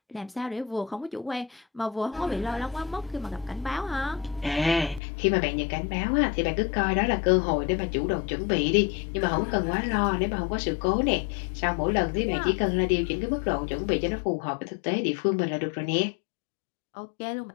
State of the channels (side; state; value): right; drops out; at 5.0 s